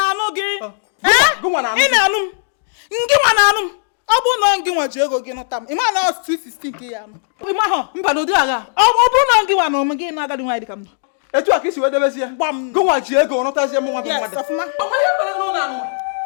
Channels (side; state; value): right; silent; digital silence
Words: on anum. Give one anum. I won't not give what you go get up. You want us to 16 p.m. But no, I won't give one again. Another do I come. A talk is whether there's one go watch you go not as your mother. Nobody